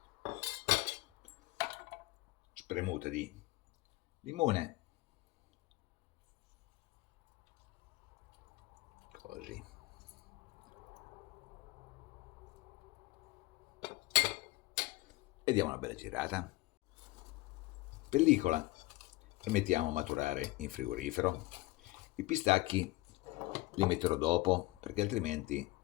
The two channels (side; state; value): right; quieter; 20.6 dB